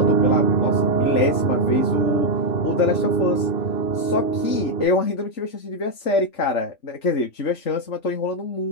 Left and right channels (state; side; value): late; right; 3.4 ms